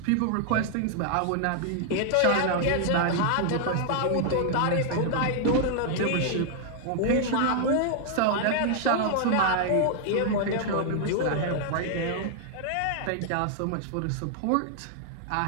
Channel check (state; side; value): different; both; correlation -0.01